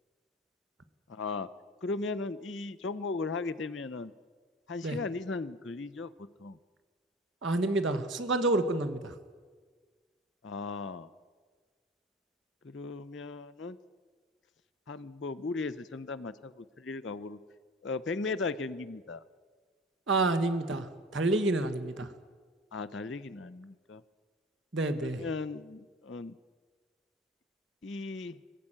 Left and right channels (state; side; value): normal; both; correlation 0.38